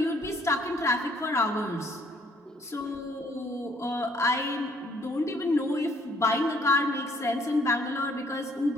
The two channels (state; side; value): normal; both; correlation 0.64